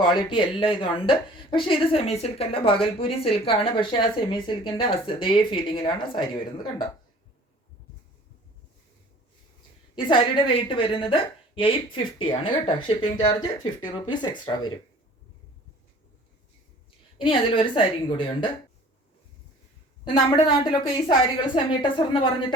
എല്ലാം ഇതുണ്ട്. പക്ഷേ ഇത് സെമി സിൽക്ക് അല്ല, ഭാഗൽപൂരി സിൽക്കാണ്. പക്ഷേ ആ സെമി സിൽക്കിൻ്റെ അതേ ഫീലിങ്ങിലാണ് സാരി വരുന്നത്. കണ്ടോ, ഈ സാരിയുടെ റേറ്റ് വരുന്നത് 850 ആണ് കേട്ടോ. ഷിപ്പിംഗ് ചാർജ് 50 rupees എക്സ്ട്രാ വരും. ഇനി അതിലൊരു സാരിയും കൂടിയുണ്ട്. നമ്മുടെ നാട്ടിലൊക്കെ ഈ സാരികൾ സെമി ടസർ എന്ന്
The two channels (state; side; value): normal; both; correlation 0.49